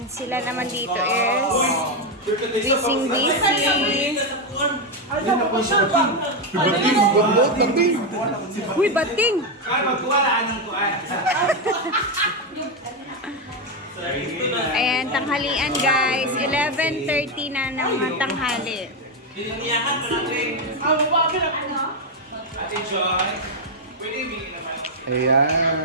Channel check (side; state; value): both; normal; correlation 0.05